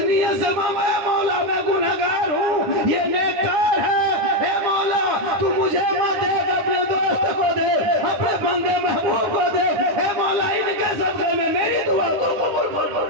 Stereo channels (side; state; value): left; late; 9.6 ms